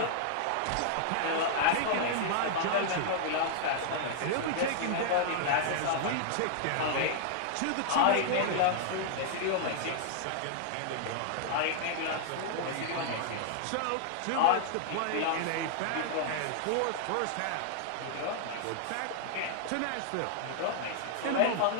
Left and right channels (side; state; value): both; different; correlation -0.01